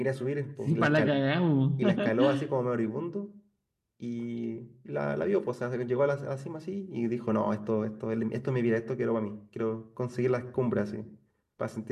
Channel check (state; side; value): identical; both; correlation 1.00